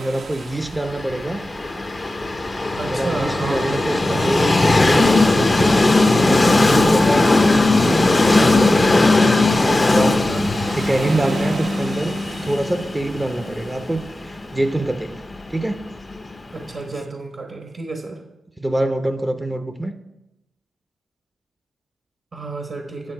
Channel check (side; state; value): both; normal; correlation 0.94